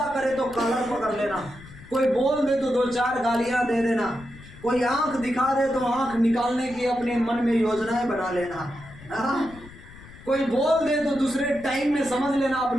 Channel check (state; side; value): noise; left; rumble, 19 dB below the sound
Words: करे तो कॉलर पकड़ लेना, कोई बोल दे तो 2-4 गालियां दे देना, कोई आंख दिखा दे तो आंख निकालने की अपने मन में योजनाएं बना लेना, कोई बोल दे तो दूसरे टाइम में समझ लेना